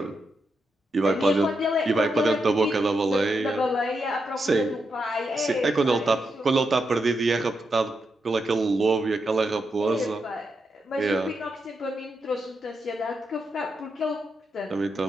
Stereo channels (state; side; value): normal; both; correlation 0.84